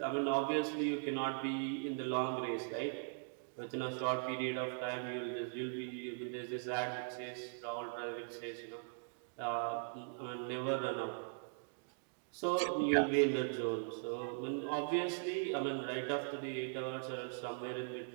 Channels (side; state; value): left; silent; digital silence